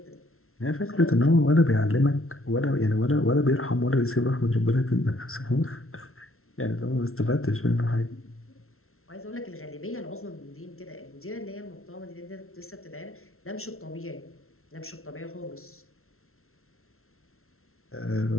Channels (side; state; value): right; late; 0.62 ms